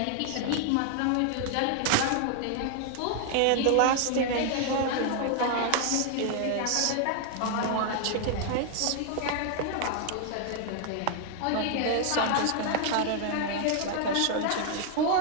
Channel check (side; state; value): both; different; correlation 0.00